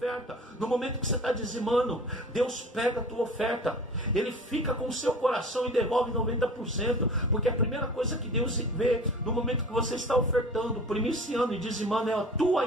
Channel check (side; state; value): both; normal; correlation 0.41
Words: no momento que você está dizimando, Deus pega a tua oferta, Ele fica com o seu coração e devolve 90%. Porque a primeira coisa que Deus vê no momento que você está ofertando, primiciando e dizimando, é a tua